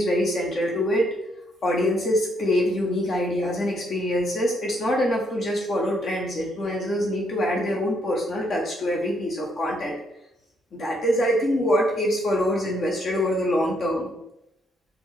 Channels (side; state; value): both; normal; correlation 0.73